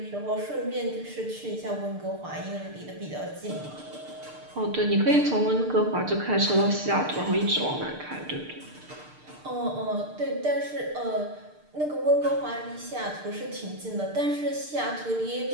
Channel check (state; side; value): late; left; 6.7 ms